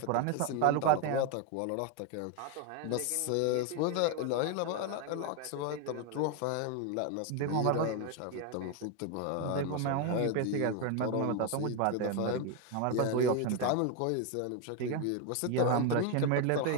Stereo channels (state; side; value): different; both; correlation 0.01